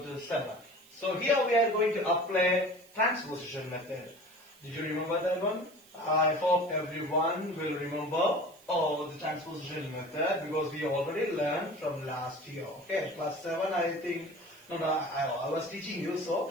to 7. So, here we are going to apply transposition method. Did you remember that one? I hope everyone will remember the transposition method because we already learned from last year. Okay, class 7 I think. No, I was teaching you, so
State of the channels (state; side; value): noise; right; hiss, 25 dB below the sound